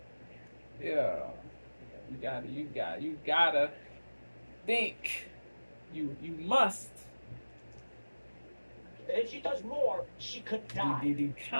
you gotta think. You must. And if she does more, she could die. The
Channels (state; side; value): inverted; both; correlation -1.00